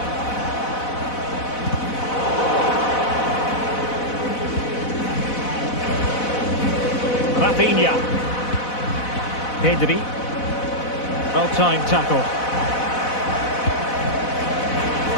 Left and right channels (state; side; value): late; right; 4.0 ms